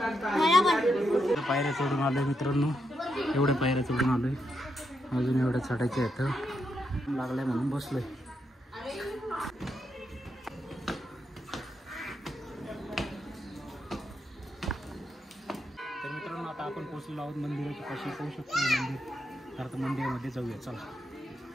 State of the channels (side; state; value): both; normal; correlation 0.82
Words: पायऱ्या चढून आलोय मित्रांनो, एवढ्या पायऱ्या चढून आलोय, अजून एवढ्या चढायच्या आहेत। लागलाय म्हणून बसलोय। तर मित्रांनो, आता आपण पोहोचलेलो आहोत मंदिराच्या पाशी, पाहू शकतो मंदिर। तर आता मंदिरामध्ये जाऊया, चला।